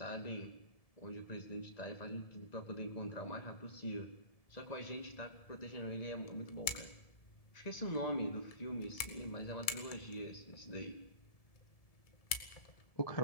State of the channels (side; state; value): right; late; 1.7 ms